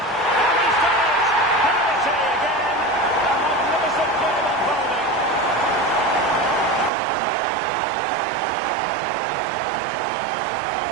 he's done it! Penalty again. A magnificent game unfolding.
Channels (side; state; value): left; drops out; at 6.9 s